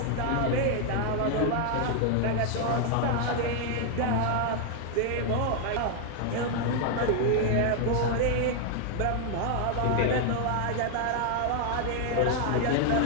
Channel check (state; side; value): different; both; correlation 0.00